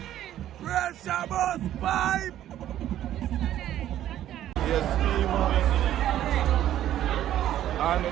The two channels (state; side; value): quieter; left; 12.1 dB